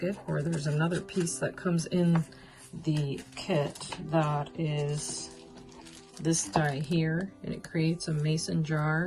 or there's another piece that comes in the kit that is this die here, and it creates a mason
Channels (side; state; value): both; identical; correlation 1.00